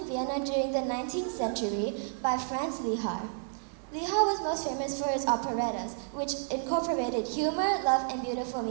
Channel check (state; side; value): silent; left; 56 dB below the other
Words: Vienna during the 19th century by Franz Lehar. Lehar was most famous for his operettas, which incorporated humor, love, and beautiful